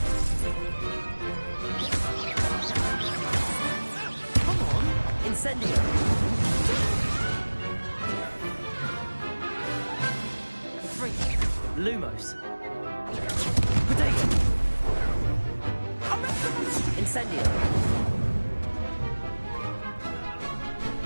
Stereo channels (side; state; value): both; inverted; correlation -1.00